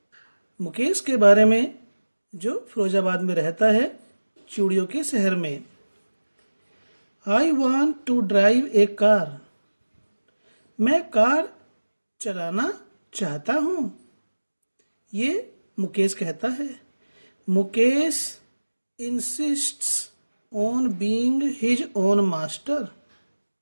मुकेश के बारे में, जो फिरोजाबाद में रहता है, चूड़ियों के शहर में। I want to drive a car. मैं कार चलाना चाहता हूँ, ये मुकेश कहता है। Mukesh insists on being his own master.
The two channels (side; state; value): both; inverted; correlation -1.00